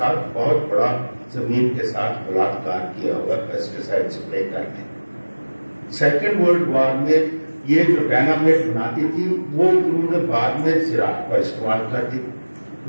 बहुत बड़ा जमीन के साथ बलात्कार किया हुआ पेस्टिसाइड स्प्रे करके। सेकेंड वर्ल्ड वॉर में ये जो डायनामाइट बनाती थी वो उन्होंने बाद में ज़राअत का इस्तेमाल कर दी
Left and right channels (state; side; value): inverted; both; correlation -1.00